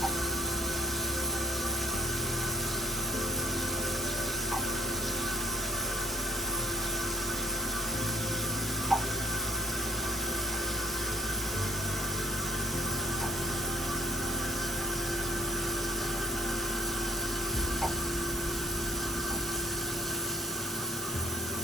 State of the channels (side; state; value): right; noise; hiss, 8 dB below the sound